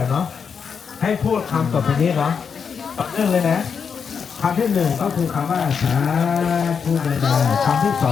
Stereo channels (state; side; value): quieter; right; 6.4 dB